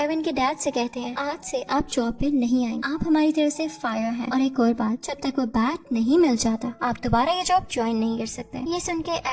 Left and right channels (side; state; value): both; identical; correlation 1.00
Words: के डैड से कहते हैं आज से आप जॉब पे नहीं आएंगे, आप हमारी तरफ से फायर हैं। और एक और बात, जब तक वो बैट नहीं मिल जाता आप दोबारा ये जॉब ज्वाइन नहीं कर सकते। ये सुन के